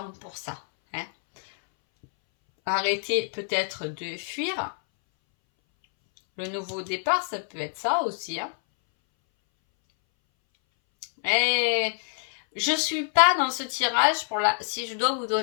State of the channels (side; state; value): right; silent; 60 dB below the other